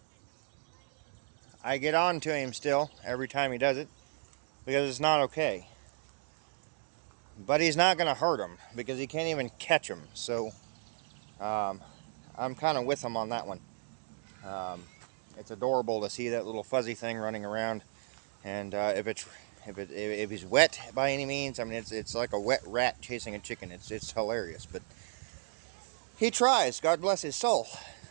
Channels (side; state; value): left; silent; digital silence